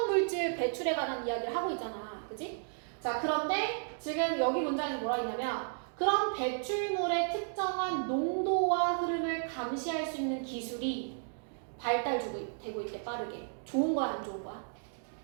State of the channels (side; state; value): left; silent; digital silence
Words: 배출에 관한 이야기를 하고 있잖아. 그치? 자, 그런데 지금 여기 문장에서 뭐라 했냐면 그런 배출물의 특정한 농도와 흐름을 감시할 수 있는 기술이 발달되고 있대, 빠르게. 좋은 거야, 안 좋은 거야?